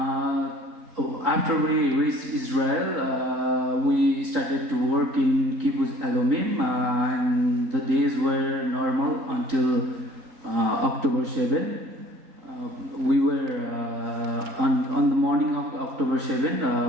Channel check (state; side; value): late; left; 3.8 ms